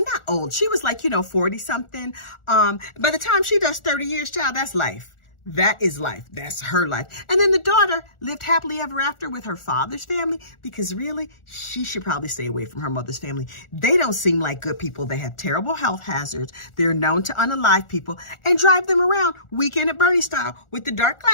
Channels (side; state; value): right; late; 1.4 ms